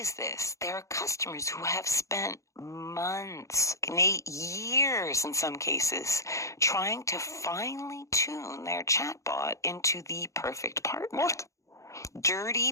this. There are customers who have spent months, years in some cases, trying to finely tune their chatbot into the perfect partner. What? Dirty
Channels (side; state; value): right; late; 0.15 ms